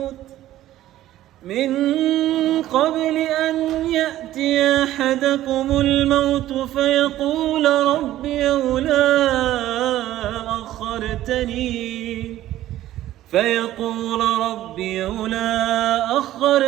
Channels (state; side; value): quieter; left; 14.0 dB